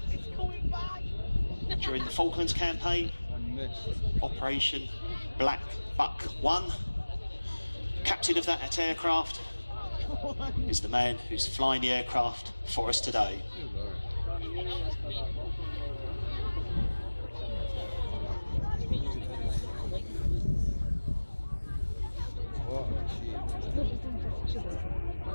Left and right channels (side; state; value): both; inverted; correlation -1.00